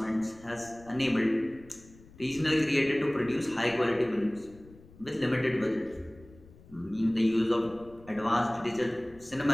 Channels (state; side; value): noise; left; rumble, 23 dB below the sound